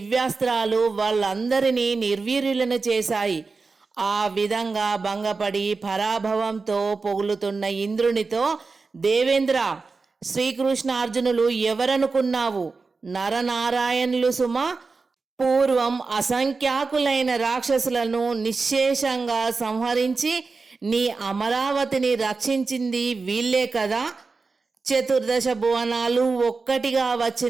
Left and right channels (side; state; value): left; quieter; 4.2 dB